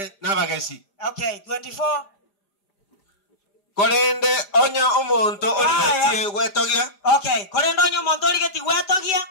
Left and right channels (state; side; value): late; right; 5.0 ms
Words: nabagesi. Okay, 24. Kolende onya omonto oligetie gwetogia. Okay, kolende onya omonto oligetie gwetogia.